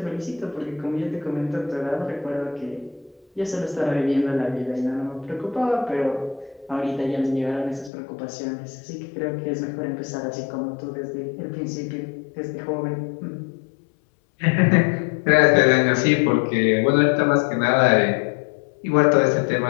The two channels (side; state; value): right; drops out; at 7.9 s